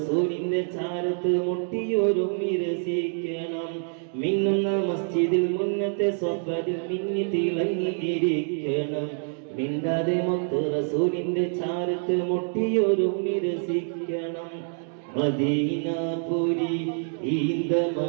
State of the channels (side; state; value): left; silent; 56 dB below the other